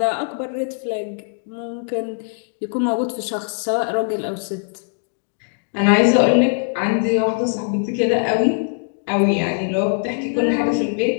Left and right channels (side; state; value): right; silent; 65 dB below the other